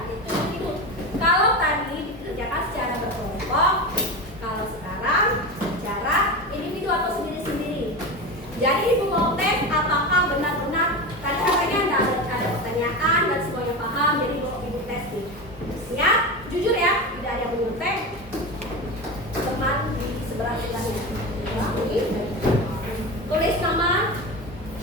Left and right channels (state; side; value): normal; both; correlation 0.23